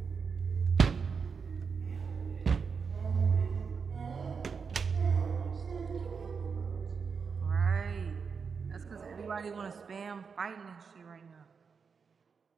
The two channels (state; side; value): quieter; left; 5.7 dB